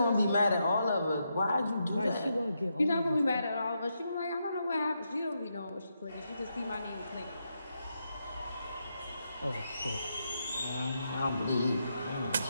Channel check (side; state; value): both; inverted; correlation -0.83